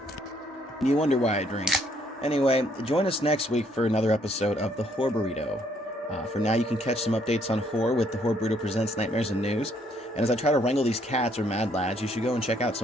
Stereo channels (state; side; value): normal; both; correlation 0.68